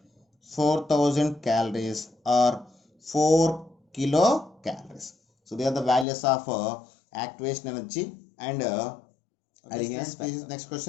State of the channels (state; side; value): drops out; right; at 6.1 s